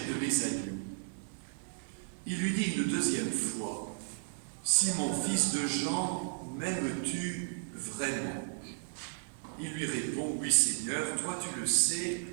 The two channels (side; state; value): left; silent; 55 dB below the other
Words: de mes agneaux. » Il lui dit une 2e fois, « Simon, fils de Jean, m'aimes-tu vraiment ?» Il lui répond, « Oui Seigneur, toi tu le sais,